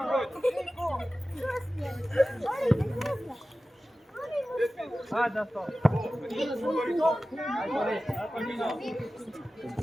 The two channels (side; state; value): both; normal; correlation 0.95